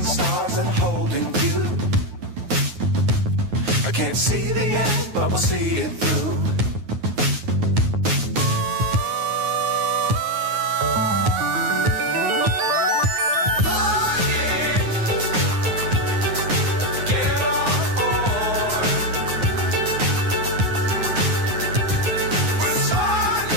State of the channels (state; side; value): late; left; 9.5 ms